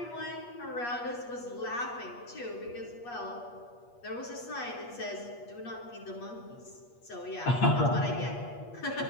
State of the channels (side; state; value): right; late; 8.4 ms